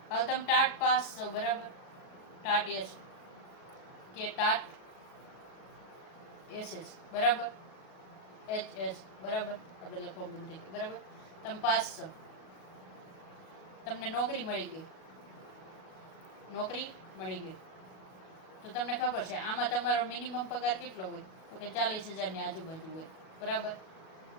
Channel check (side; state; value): right; late; 38 ms